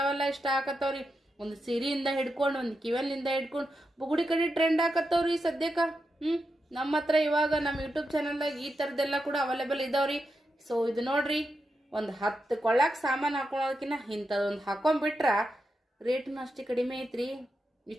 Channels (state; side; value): normal; both; correlation 0.87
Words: ಇಷ್ಟ ಆಕತ್ತವ್ರಿ. ಒಂದು ಸೀರೆಯಿಂದ ಹಿಡ್ಕೊಂಡು ಒಂದು ಕಿವನ್ನಿಂದ ಹಿಡ್ಕೊಂಡು ಬುಗುಡಿ ಕಡೆ ಟ್ರೆಂಡ್ ಆಕತ್ತವ್ರಿ ಸದ್ಯಕ್ಕ. ನಮ್ಮ ಹತ್ರ ಇವಾಗ ನಮ್ಮ ಯೂಟ್ಯೂಬ್ ಚಾನಲ್ದಾಗ ಈ ಥರದ್ದೆಲ್ಲ ಕೂಡ ಅವೈಲೇಬಲ್ ಇದಾವ್ರಿ. ಸೊ ಇದು ನೋಡ್ರಿ, ಒಂದು 10 ಕೊಳ್ಳಾಕ ಸಾಮಾನು ಹಾಕೊಳೋದಕ್ಕಿಂತ ಇಂಥದೊಂದು ಹಾಕೊಂಡ್ಬಿಟ್ರ ರೇಟ್ನು ಅಷ್ಟೇ ಕಡಿಮೆ ಐತ್ರಿ.